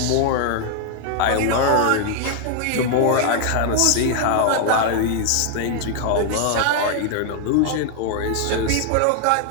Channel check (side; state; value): both; different; correlation 0.00